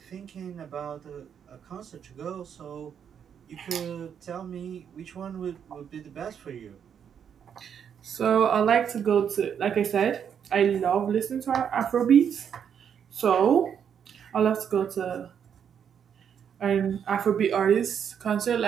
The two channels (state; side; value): quieter; left; 8.0 dB